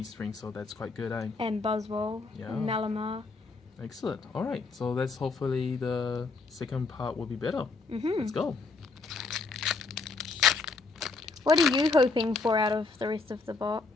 so that's quite good, eh? And Buzzwole, Yeah. and Malamar. Excellent. Alright, so that's hopefully the second part will be better. Let's go. What are you hoping for out of the rest of the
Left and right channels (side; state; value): right; quieter; 4.0 dB